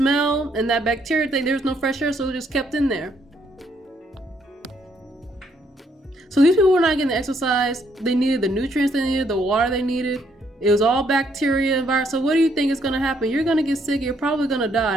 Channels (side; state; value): both; normal; correlation 0.71